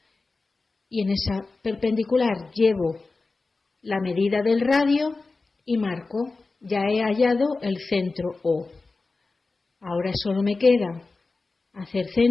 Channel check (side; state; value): right; quieter; 3.7 dB